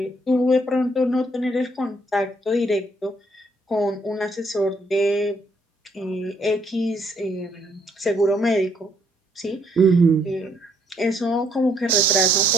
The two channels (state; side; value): normal; both; correlation 0.69